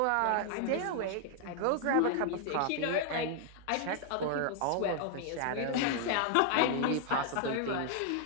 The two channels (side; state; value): both; different; correlation 0.00